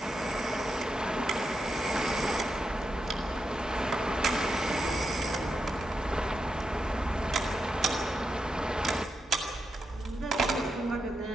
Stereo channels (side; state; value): both; normal; correlation 0.86